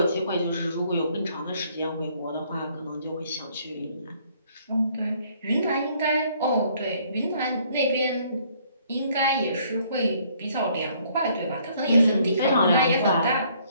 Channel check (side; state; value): both; inverted; correlation -0.63